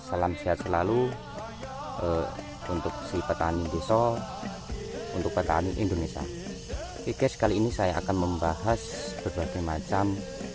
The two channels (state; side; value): identical; both; correlation 1.00